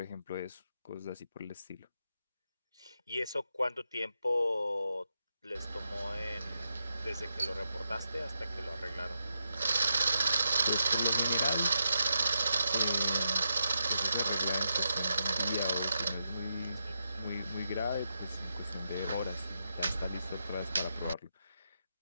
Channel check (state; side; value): inverted; both; correlation -0.84